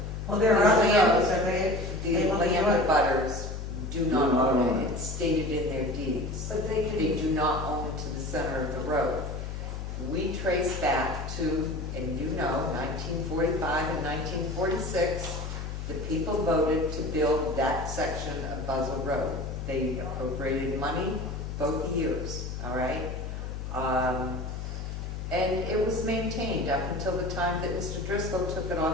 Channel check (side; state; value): left; noise; hum, 6 dB below the sound